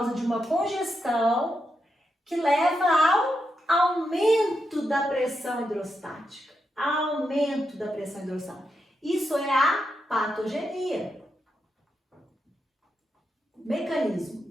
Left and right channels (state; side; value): normal; both; correlation 0.85